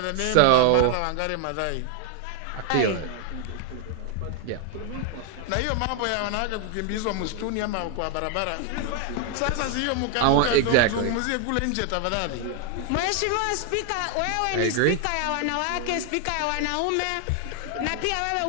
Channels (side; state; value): both; different; correlation 0.00